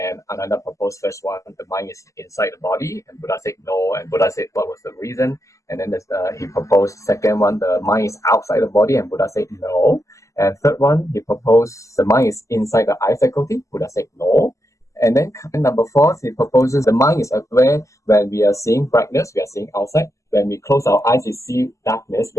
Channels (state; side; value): late; right; 0.16 ms